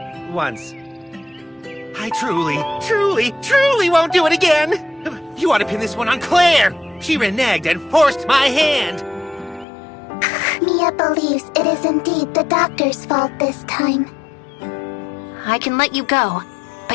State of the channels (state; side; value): drops out; right; at 9.7 s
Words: once. I truly won't do it again. You ought to pin this one on Claire. She reneged and forced my hand. Mia believes it is indeed the doctor's fault this time. I can let you go,